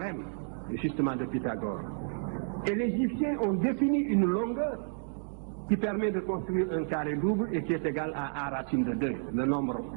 justement, de Pythagore. Et les Égyptiens ont défini une longueur qui permet de construire un carré double et qui est égal à A racine de 2, le nombre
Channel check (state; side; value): silent; left; digital silence